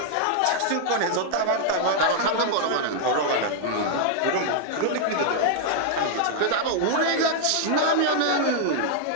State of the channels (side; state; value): both; different; correlation -0.01